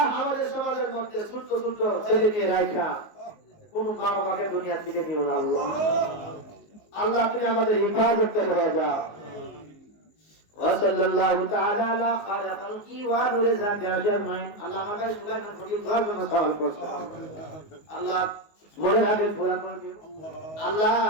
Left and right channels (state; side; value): late; right; 19 ms